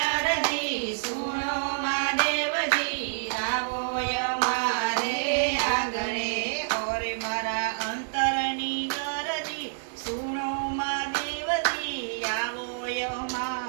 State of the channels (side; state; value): left; silent; digital silence